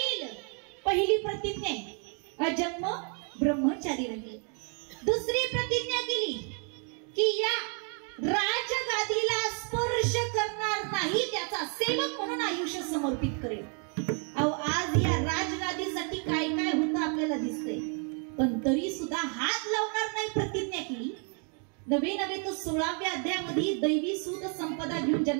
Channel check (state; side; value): quieter; left; 40.0 dB